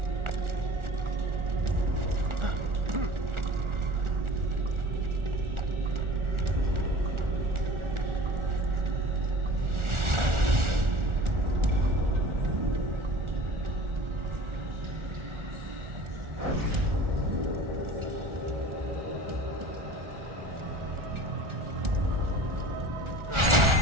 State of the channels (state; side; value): late; left; 1.4 ms